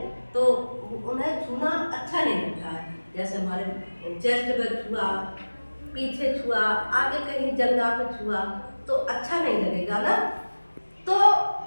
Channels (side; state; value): both; inverted; correlation -1.00